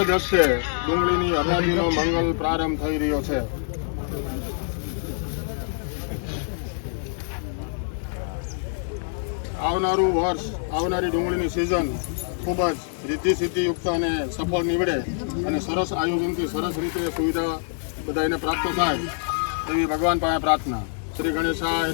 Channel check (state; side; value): silent; right; digital silence